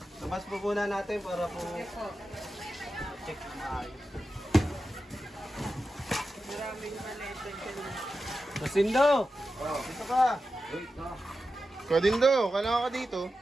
Labas po muna natin para po... check na ayos. Maraming maleta dyan. Masindo! Dito ka. Kadindo, kailangan ka dito.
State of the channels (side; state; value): both; normal; correlation 0.91